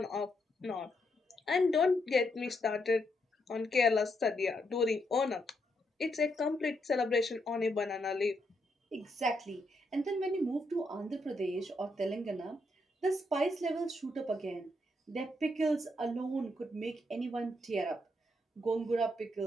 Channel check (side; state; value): both; normal; correlation 0.78